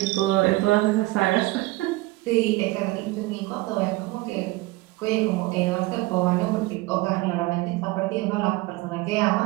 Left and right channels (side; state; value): left; quieter; 20.4 dB